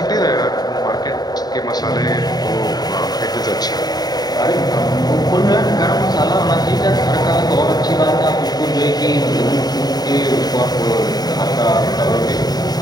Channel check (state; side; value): late; right; 0.19 ms